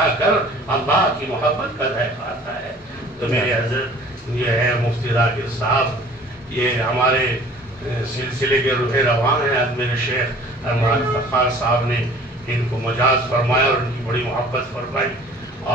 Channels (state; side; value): normal; both; correlation 0.49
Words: کر اللہ کی محبت کا ذائقہ آتا ہے۔ تو میرے حضرت یہ ہے مفتی ذاکر صاحب، یہ ہمارے سلسلے کے روح رواں ہیں۔ میرے شیخ المراد فخار صاحب نے ان کو مجاز فرمایا اور ان کی بڑی محبت فرمائی،